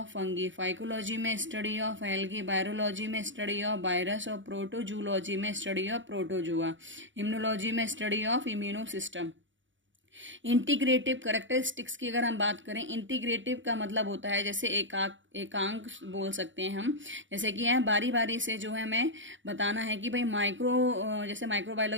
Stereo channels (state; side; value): late; left; 0.55 ms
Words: फंगी, फाइकोलॉजी में स्टडी ऑफ एल्गी, बायोलॉजी में स्टडी ऑफ वायरस, और प्रोटोजूलॉजी में स्टडी ऑफ प्रोटोजुआ, इम्यूनोलॉजी में study of immuno system. Integrative characteristics की अगर हम बात करें, इंटीग्रेटिव का मतलब होता है जैसे एकांक बोल सकते हैं हम, जैसे कि है बारी बारी से जो है हमें बताना है कि भाई जैसे